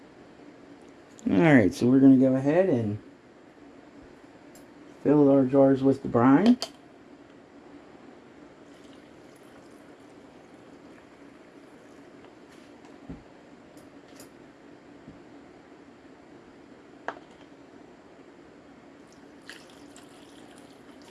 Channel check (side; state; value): both; identical; correlation 1.00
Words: Alright, so we're going to go ahead and fill our jars with the brine.